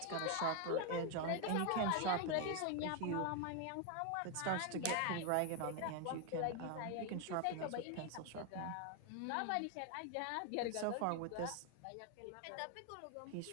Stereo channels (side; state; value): both; different; correlation 0.01